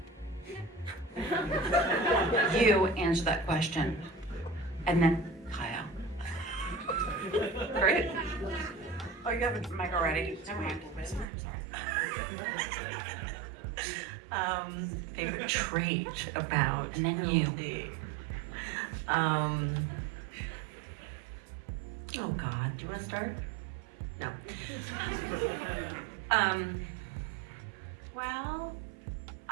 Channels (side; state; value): left; drops out; at 11.2 s